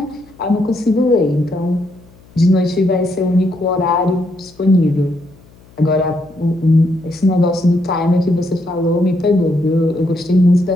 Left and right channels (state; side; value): noise; left; hum, 26 dB below the sound